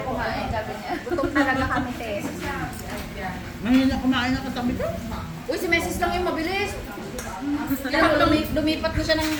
kumain, sabi niya. Gutom talaga kami, te. Ngayon na kumain na katabi ko. Uy, si Mesis lang yung mabilis. Kaya lumipat na siya ng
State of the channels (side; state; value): both; identical; correlation 1.00